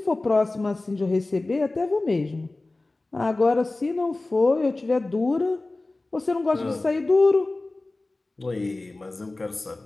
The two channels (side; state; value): right; quieter; 3.0 dB